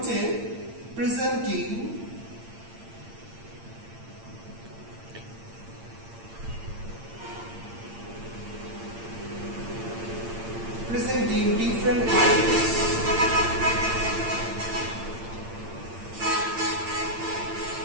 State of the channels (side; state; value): left; late; 8.8 ms